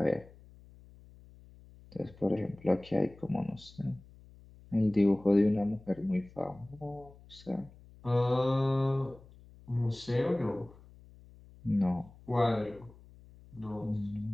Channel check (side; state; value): left; noise; hum, 23 dB below the sound